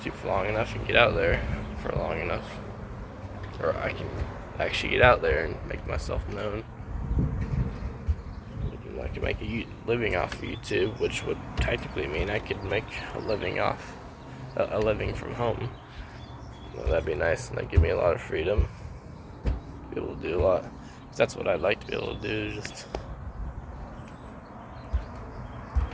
for long enough and get out there for long enough, or I can actually get out there and make myself known. I could make a living off of YouTube, which would technically mean I could make a living from home. Well, that'd be nice, and that'd give me a lot of freedom. Be able to do a lot. That's what I'd like to be able to do, just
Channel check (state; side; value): identical; both; correlation 1.00